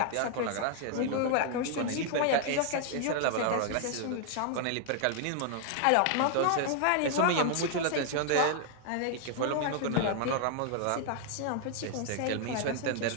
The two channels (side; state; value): both; different; correlation 0.00